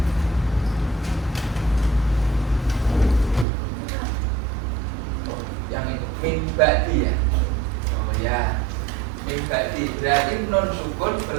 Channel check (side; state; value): left; drops out; at 3.5 s